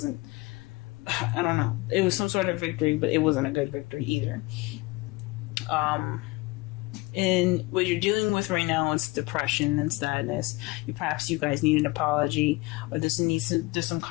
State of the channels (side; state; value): right; quieter; 22.9 dB